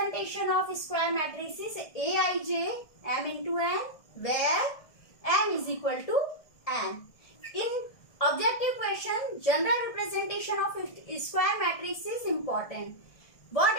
of square matrix is Aij m into n where m is equal to n. In objective question, general representation of square matrix is important. What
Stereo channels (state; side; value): late; right; 1.6 ms